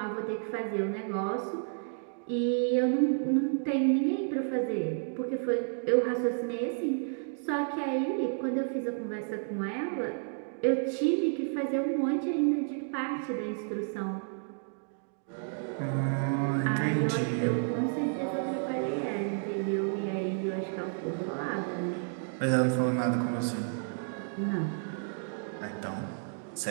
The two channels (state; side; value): silent; left; digital silence